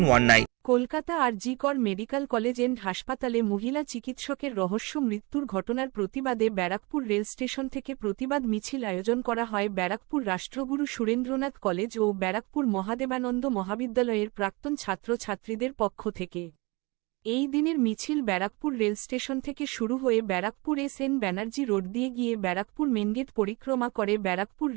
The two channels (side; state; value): left; quieter; 26.2 dB